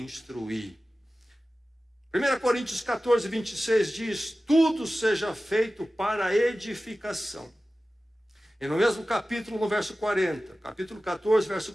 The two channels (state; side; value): normal; both; correlation 0.96